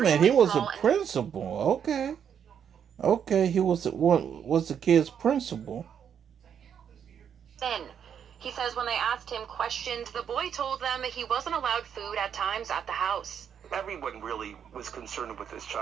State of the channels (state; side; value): quieter; left; 8.1 dB